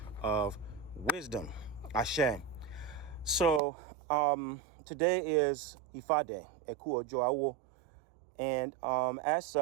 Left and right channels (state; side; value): drops out; left; at 3.6 s